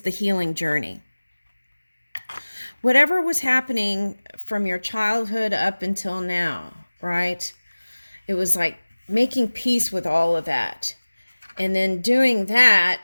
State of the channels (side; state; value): both; inverted; correlation -1.00